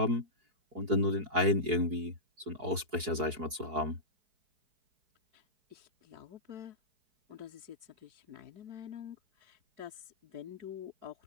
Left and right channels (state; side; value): late; left; 4.6 ms